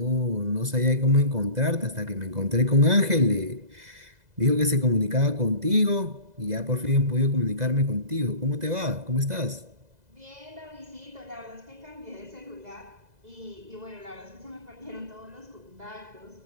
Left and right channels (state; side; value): late; left; 2.0 ms